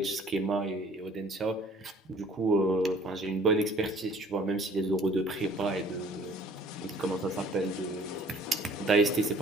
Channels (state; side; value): normal; both; correlation 0.54